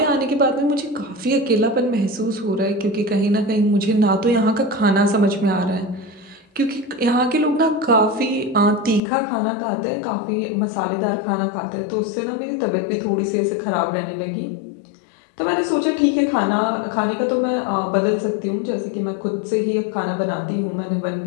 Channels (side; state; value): right; drops out; at 9.0 s